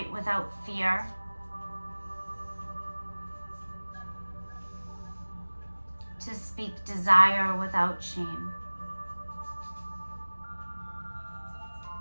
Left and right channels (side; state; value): both; inverted; correlation -1.00